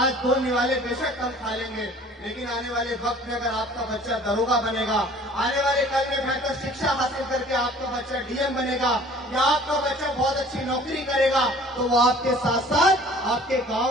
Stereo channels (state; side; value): normal; both; correlation 0.50